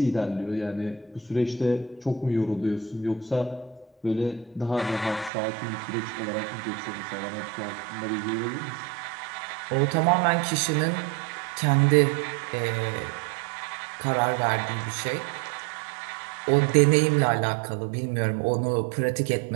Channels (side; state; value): left; drops out; at 5.3 s